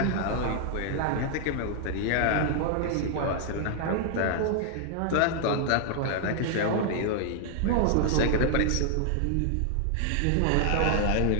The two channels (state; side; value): different; both; correlation 0.00